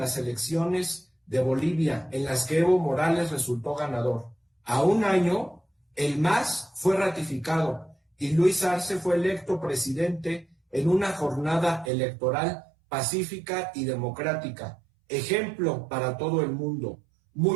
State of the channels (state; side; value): drops out; left; at 11.9 s